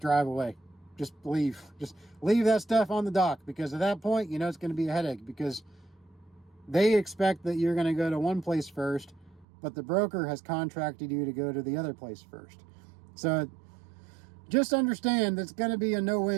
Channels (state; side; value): drops out; left; at 9.5 s